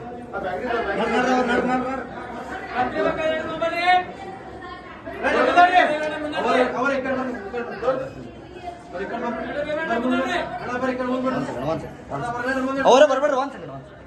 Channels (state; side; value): identical; both; correlation 1.00